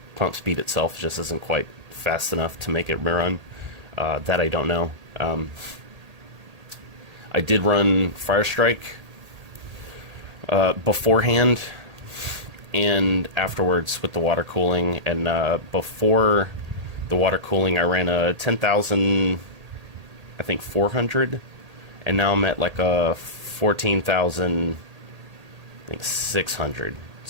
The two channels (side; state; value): left; late; 1.8 ms